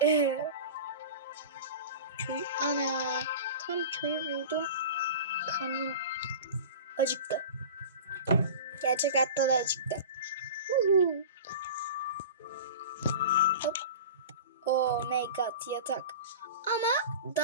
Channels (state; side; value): inverted; both; correlation -0.34